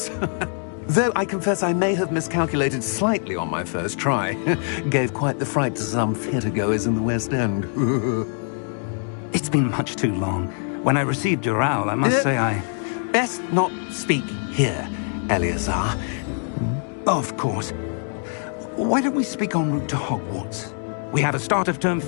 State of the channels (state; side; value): silent; right; 56 dB below the other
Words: Though I confess I may have miscalculated slightly on my first try. Gave quite the fright to some theatre-goers in the West End. It's been much too long. When I received your owl, I must say I... Best not speak here, Eleazar. Of course. Why don't we speak en route to Hogwarts? We have a start-of-term